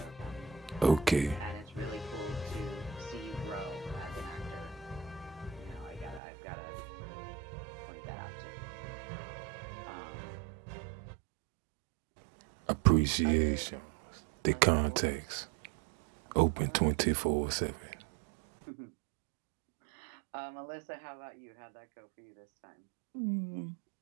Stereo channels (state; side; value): drops out; left; at 6.2 s